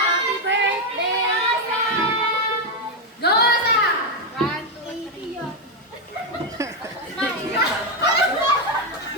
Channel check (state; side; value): normal; both; correlation 0.04